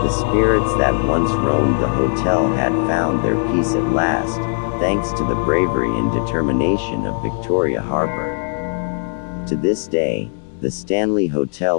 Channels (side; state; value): right; silent; digital silence